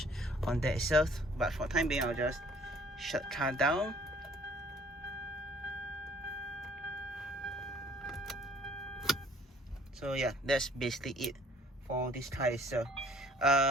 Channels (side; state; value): both; normal; correlation 0.57